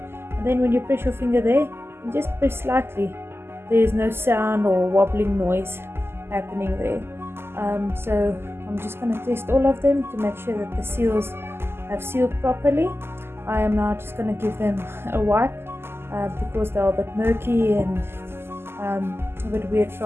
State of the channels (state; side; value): late; left; 0.12 ms